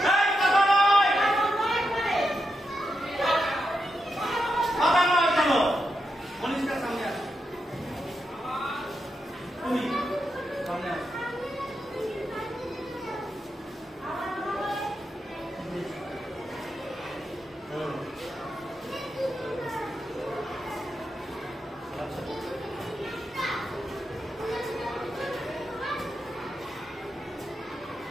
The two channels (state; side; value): normal; both; correlation 0.86